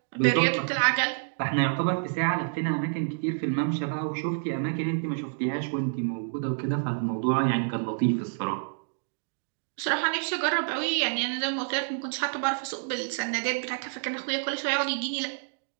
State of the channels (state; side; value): silent; left; digital silence